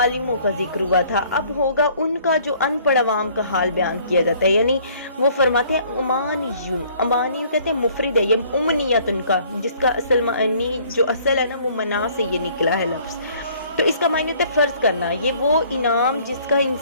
کا ذکر ہوا تھا، اب ہوگا ان کا جو ان پڑھ عوام کا حال بیان کیا جاتا ہے، یعنی وہ فرماتے ہیں امانیون، امانی کہتے ہیں مفرد ہے، یہ امنیت ان کا، جس کا اصل معنی جو اصل ہے نا وہ منا سے یہ نکلا ہے لفظ، تو اس کا معنی ہوتا ہے فرض کرنا، یہ وہ انعام جس کا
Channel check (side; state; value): both; inverted; correlation -0.58